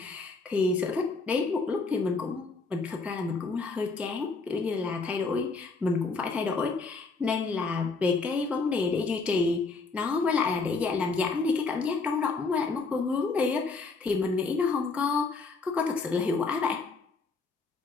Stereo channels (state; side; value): quieter; right; 4.1 dB